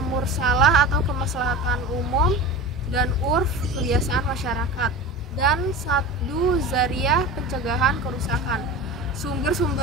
mursalah atau kemaslahatan umum, dan urf kebiasaan masyarakat, dan saddu zariyah pencegahan kerusakan.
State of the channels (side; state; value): both; normal; correlation 0.32